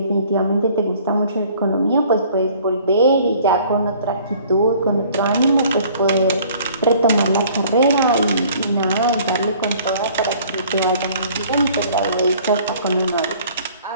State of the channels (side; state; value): both; inverted; correlation -0.54